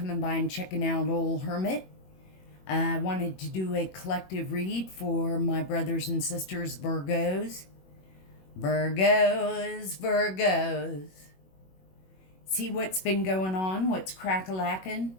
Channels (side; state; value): right; late; 21 ms